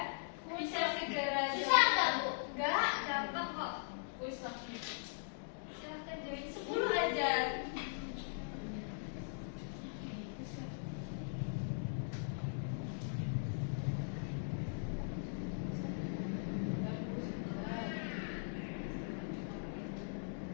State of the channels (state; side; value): silent; right; digital silence